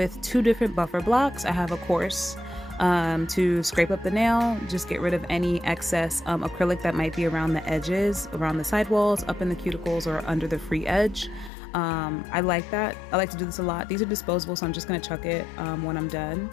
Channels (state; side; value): drops out; right; at 11.5 s